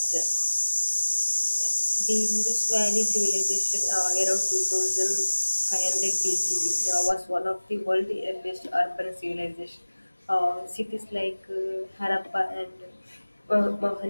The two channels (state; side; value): inverted; both; correlation -1.00